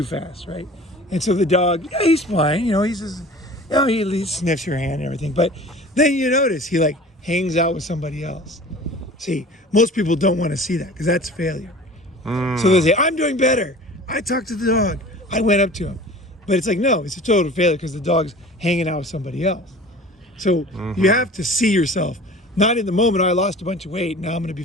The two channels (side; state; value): both; normal; correlation 0.42